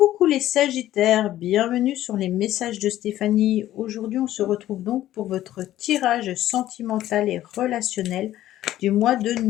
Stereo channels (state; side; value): quieter; right; 13.6 dB